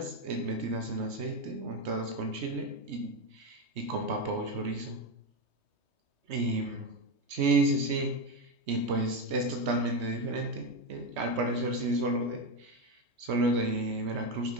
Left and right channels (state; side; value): late; left; 3.2 ms